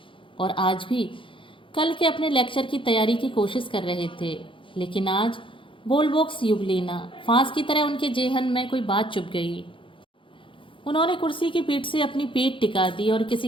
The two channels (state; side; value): late; right; 0.25 ms